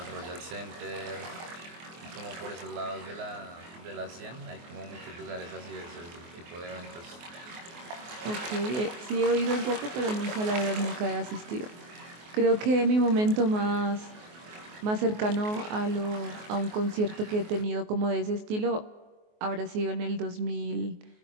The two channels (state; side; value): late; left; 24 ms